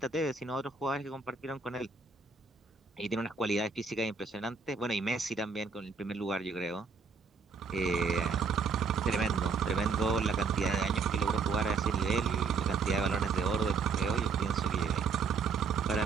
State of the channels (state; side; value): quieter; left; 4.9 dB